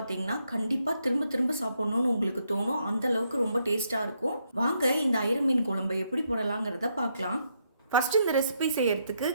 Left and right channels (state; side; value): inverted; both; correlation -0.77